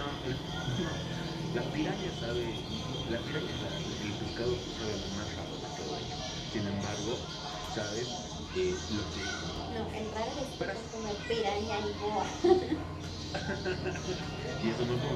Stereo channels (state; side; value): identical; both; correlation 1.00